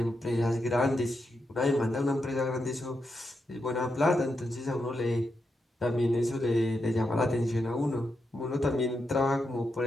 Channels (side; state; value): both; normal; correlation 0.85